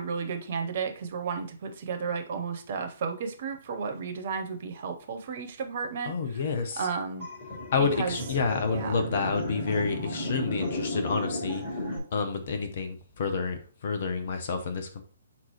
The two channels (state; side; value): inverted; both; correlation -0.61